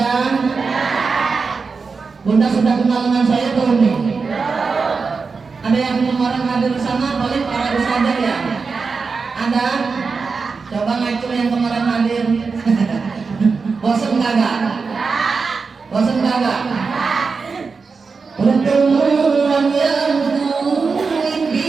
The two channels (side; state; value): left; quieter; 4.8 dB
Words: Bunda sudah kenal dengan saya belum nih? Ada yang kemarin hadir di sana, paling para ustadzah ya? Ada? Coba ngacu yang kemarin hadir. Bosan kagak? Bosan kagak? Pertemuan yang